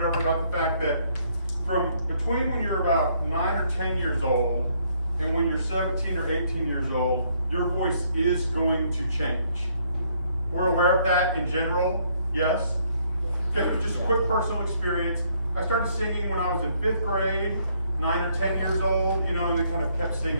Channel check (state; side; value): inverted; both; correlation -0.68